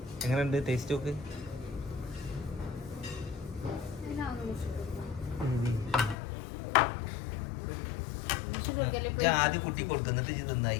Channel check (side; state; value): right; drops out; at 6.2 s